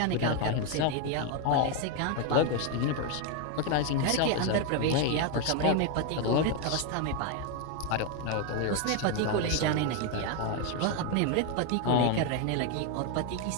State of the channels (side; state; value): both; different; correlation 0.01